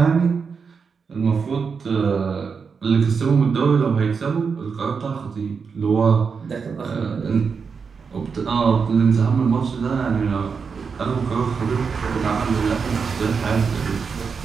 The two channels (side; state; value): left; quieter; 5.6 dB